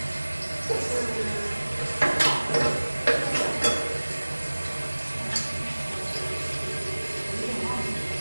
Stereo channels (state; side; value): inverted; both; correlation -1.00